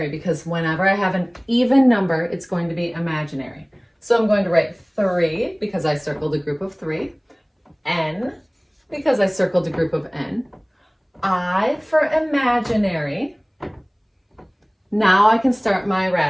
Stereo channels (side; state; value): both; identical; correlation 1.00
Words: because whenever I have an even number, it's going to be imaginary. So I'm going to write 3 because I circled a group of 3, n because I circled a group of n, I for imaginary. Now I can start my